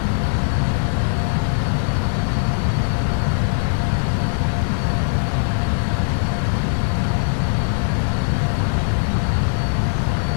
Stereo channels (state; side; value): silent; right; digital silence